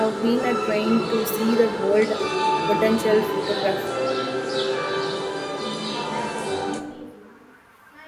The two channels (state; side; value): identical; both; correlation 1.00